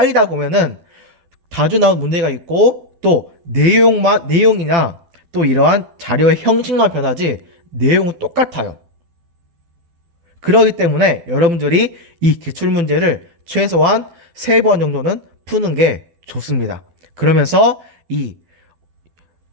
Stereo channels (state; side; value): late; left; 12 ms